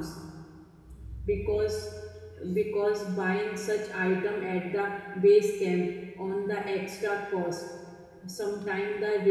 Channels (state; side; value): identical; both; correlation 1.00